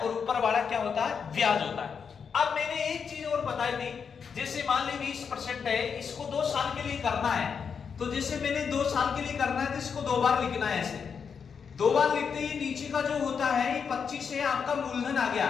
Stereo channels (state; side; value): quieter; right; 6.4 dB